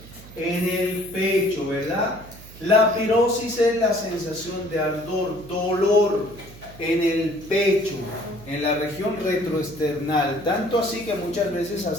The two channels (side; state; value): right; noise; hum, 18 dB below the sound